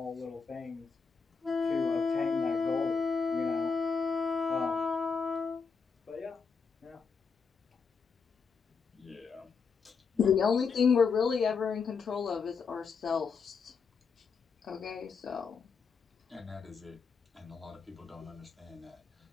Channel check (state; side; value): quieter; right; 5.3 dB